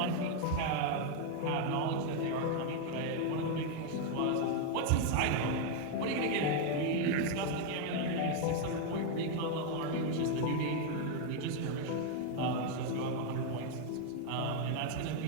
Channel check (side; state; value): both; different; correlation 0.00